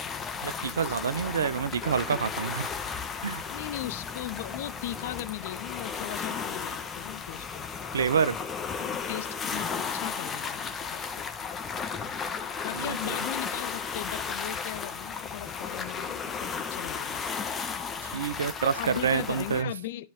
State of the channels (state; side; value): normal; both; correlation -0.14